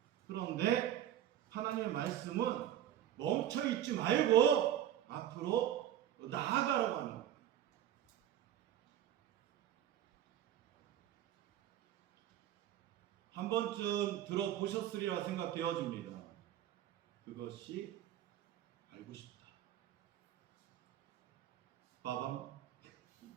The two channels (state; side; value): quieter; left; 11.3 dB